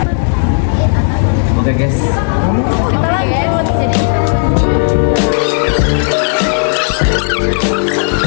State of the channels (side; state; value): right; silent; digital silence